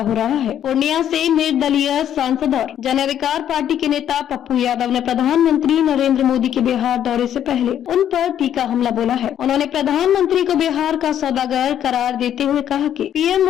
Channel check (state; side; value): quieter; right; 10.2 dB